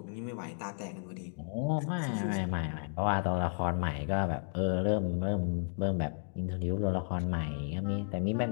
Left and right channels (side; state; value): right; silent; 56 dB below the other